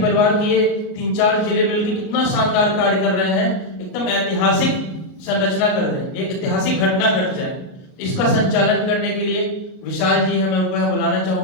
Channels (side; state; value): right; late; 38 ms